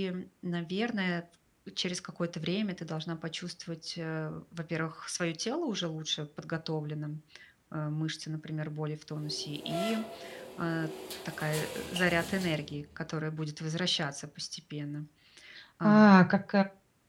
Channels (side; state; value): both; identical; correlation 1.00